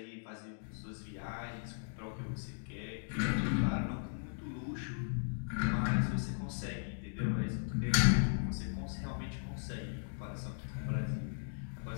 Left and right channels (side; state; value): right; silent; digital silence